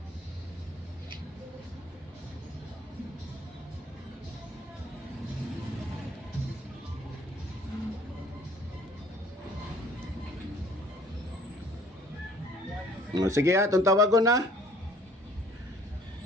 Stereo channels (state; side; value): normal; both; correlation 0.55